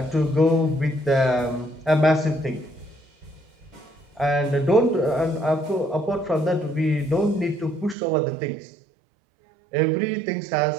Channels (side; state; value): left; drops out; at 8.0 s